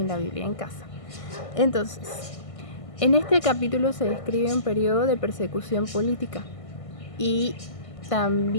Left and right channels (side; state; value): right; late; 1.5 ms